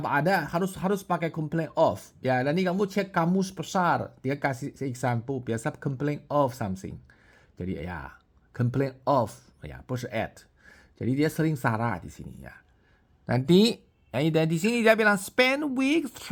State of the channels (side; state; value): both; identical; correlation 1.00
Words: ada. Harus pakai complain of. Ya, nanti kamu cek kamus besar. Dia kasih example. Biasa complain of something. Jadi ya, complain of. Ya, bukan at. Jadi dia sering salah di sini ya. Nanti di sini dia bilang spend weeks